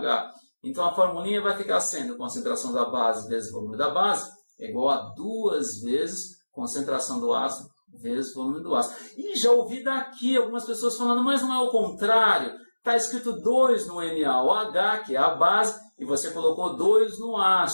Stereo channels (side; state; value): both; inverted; correlation -1.00